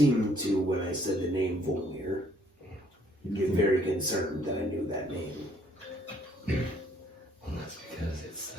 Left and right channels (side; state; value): both; normal; correlation 0.64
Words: to, when I said the name Volmir, get very concerned that I knew that name. Well, that's because it's